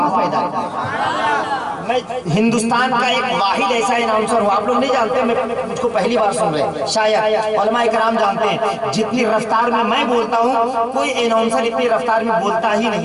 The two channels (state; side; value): identical; both; correlation 1.00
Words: میں ہندوستان کا ایک واحد ایسا اناؤنسر ہوں، آپ لوگ نہیں جانتے، مجھ کو پہلی بار سن رہے، شاید علماء کرام جانتے ہیں، جتنی رفتار میں بولتا ہوں کوئی اناؤنسر اتنی رفتار میں بولتا ہی